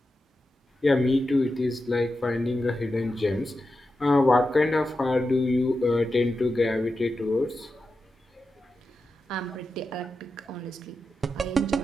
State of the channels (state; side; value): normal; both; correlation 0.90